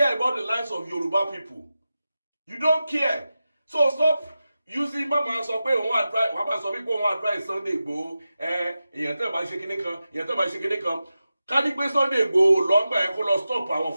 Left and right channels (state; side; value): inverted; both; correlation -0.92